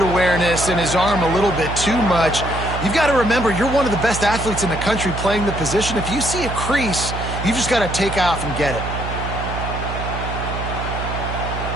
awareness and his arm a little bit too much. You've got to remember, you're one of the best athletes in the country playing the position. If you see a crease, you've just got to take off and get it.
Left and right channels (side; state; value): right; noise; hum, 6 dB below the sound